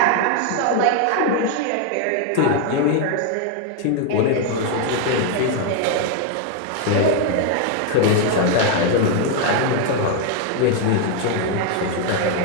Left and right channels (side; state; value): both; different; correlation 0.01